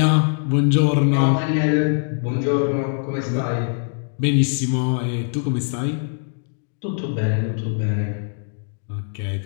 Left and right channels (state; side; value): silent; right; 64 dB below the other